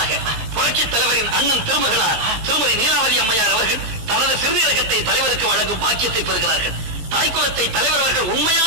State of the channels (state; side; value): late; left; 18 ms